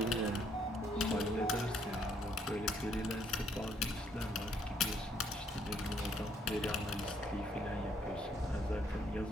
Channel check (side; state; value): both; normal; correlation 0.68